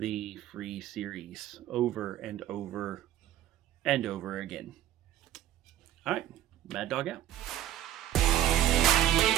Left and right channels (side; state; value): left; quieter; 12.6 dB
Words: free series over and over and over again. All right, Mad Dog out.